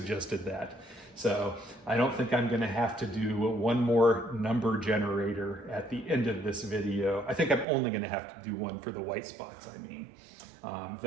that. So I don't think I'm gonna have to do one more number generator at the end of this video. I think I'm only gonna have to do one for the white spots, I mean.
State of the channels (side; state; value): left; drops out; at 7.7 s